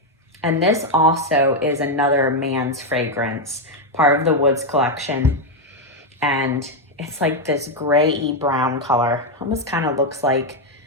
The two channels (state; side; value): normal; both; correlation 0.03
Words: And this also is another man's fragrance, part of the Woods collection. And it's like this gray-y brown color. Almost kind of looks like,